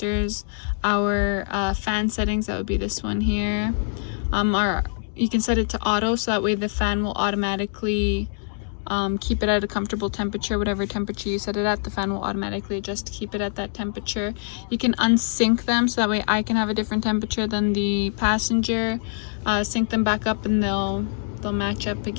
our fan settings. That would be this one here. You can set it to auto, so that way the fan will automatically keep it at a comfortable temperature. Whatever temperature you set it at, the fan will automatically adjust to keep it at that temperature. You can unsync them, so that way I can have a different temperature than the passenger. Sync them back up and they'll match up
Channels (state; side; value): silent; right; digital silence